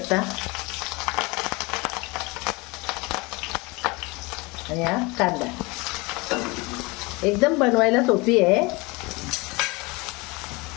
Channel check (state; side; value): quieter; right; 25.6 dB